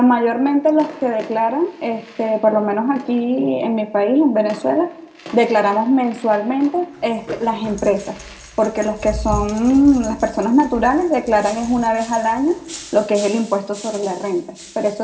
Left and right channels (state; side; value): identical; both; correlation 1.00